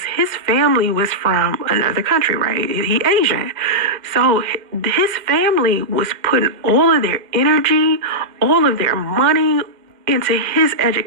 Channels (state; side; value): late; left; 2.1 ms